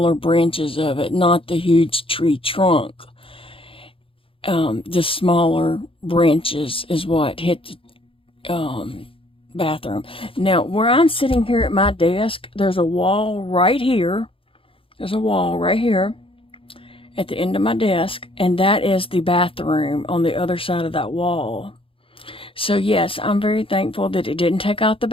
branches of it, not the huge tree trunk. The smaller branches is what hit the bathroom. Now, where I'm sitting here at my desk, there's a wall right here. There's a wall right here at the end of my desk, and that is the bathroom on the other side of that wall. So yes, I'm very thankful that it didn't take out the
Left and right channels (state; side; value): late; right; 0.26 ms